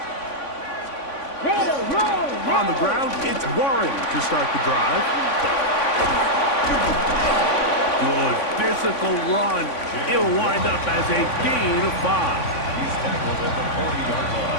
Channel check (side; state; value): right; late; 3.5 ms